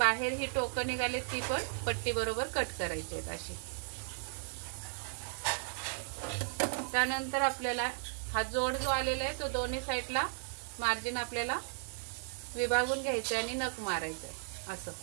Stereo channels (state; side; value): silent; left; digital silence